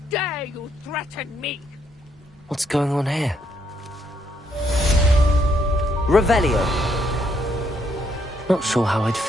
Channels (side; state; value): both; normal; correlation 0.73